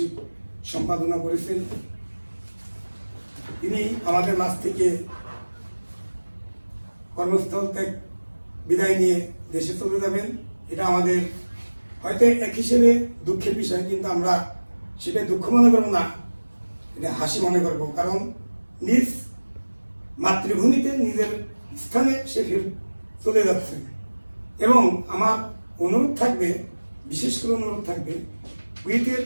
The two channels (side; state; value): both; inverted; correlation -1.00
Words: সম্পাদনা করেছেন। তিনি আমাদের মাঝ থেকে কর্মস্থল থেকে বিদায় নিয়ে দেশে চলে যাবেন। এটা আমাদের হয়তো এক হিসেবে দুঃখের বিষয়, কিন্তু আমরা সেটা দুঃখ মনে করবো না, এটা হাসি মনে করবো। কারণ নিজ মাতৃভূমিতে নিজের স্থানে সে ফের চলে যাচ্ছে। এবং আমার অনুরোধ থাকবে, বিশেষ করে অনুরোধ থাকবে, কুয়েতের